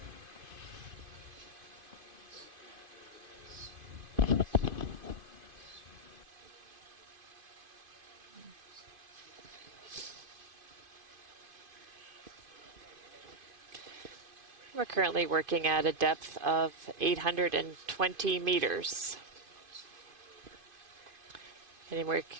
We're currently working at a depth of 820 meters. And we're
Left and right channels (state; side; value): late; left; 2.5 ms